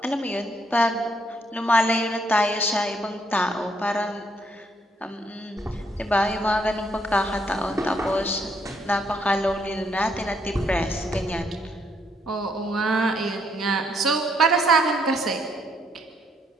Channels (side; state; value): both; normal; correlation 0.72